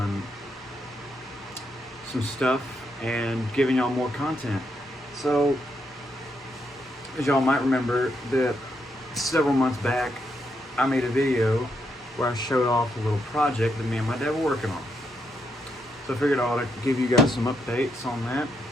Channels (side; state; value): both; normal; correlation 0.79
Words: some stuff and giving y'all more content. So as y'all might remember that several months back I made a video where I showed off a little project that me and my dad were working on. So I figured I ought to give you guys some updates on that.